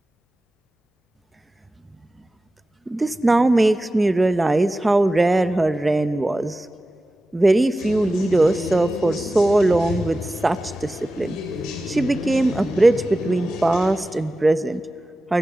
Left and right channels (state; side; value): normal; both; correlation 0.95